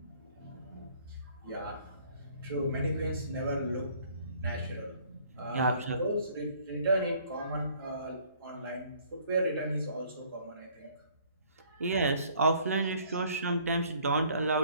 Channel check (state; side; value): inverted; both; correlation -0.58